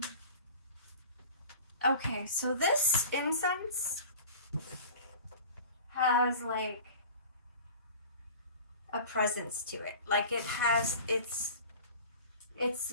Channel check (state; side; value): inverted; both; correlation -0.39